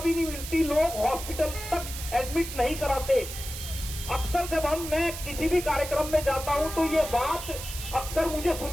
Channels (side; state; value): right; noise; hiss, 9 dB below the sound